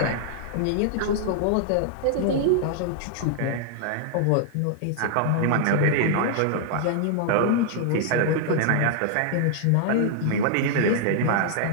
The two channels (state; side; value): different; both; correlation -0.01